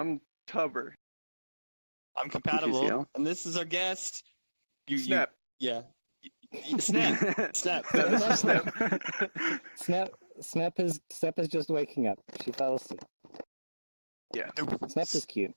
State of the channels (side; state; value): both; inverted; correlation -1.00